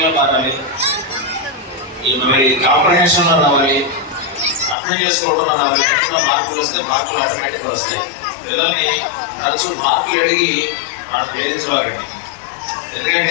మారాలి, మరి కాంప్రహెన్షన్లో రావాలి, అర్థం చేసుకోవడంలో రావాలి. ఎట్లా మార్కులు వస్తే మార్కులు ఆటోమేటిక్గా వస్తాయి. పిల్లల్ని తరచూ మార్కులు అడిగి మనం వేధించవాలండి.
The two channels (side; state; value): right; drops out; at 4.8 s